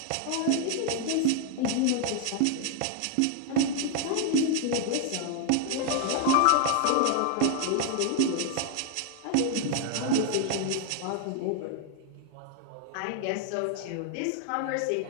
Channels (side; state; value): both; different; correlation 0.00